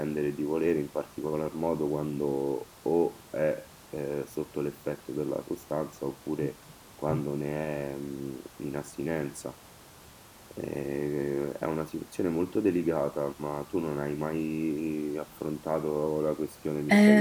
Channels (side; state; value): both; identical; correlation 1.00